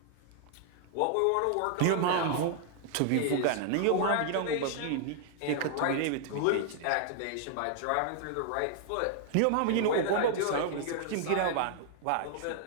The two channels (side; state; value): both; different; correlation -0.01